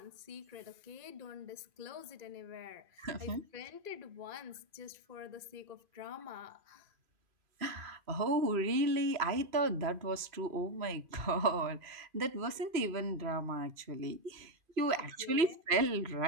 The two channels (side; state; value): left; late; 2.5 ms